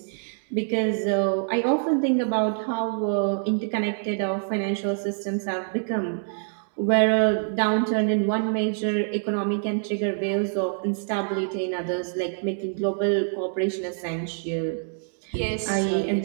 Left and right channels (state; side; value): silent; left; digital silence